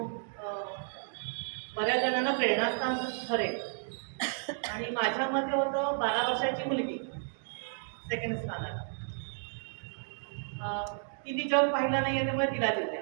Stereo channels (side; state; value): left; silent; digital silence